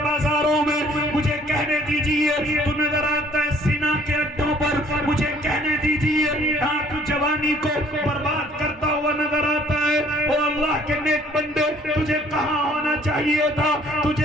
میں، مجھے کہنے دیجئے تو نظر آتا ہے سینا کے اڈوں پر، مجھے کہنے دیجئے ہاں تو جوانی کو برباد کرتا ہوا نظر آتا ہے. او اللہ کے نیک بندے، تجھے کہاں ہونا چاہیے تھا؟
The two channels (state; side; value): normal; both; correlation 0.58